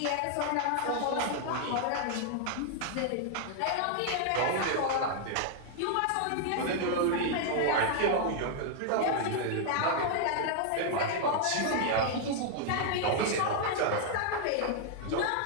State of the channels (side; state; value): both; different; correlation 0.00